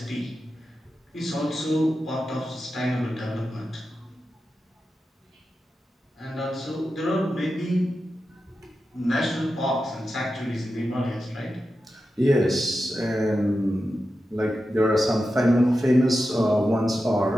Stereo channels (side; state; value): both; normal; correlation 0.91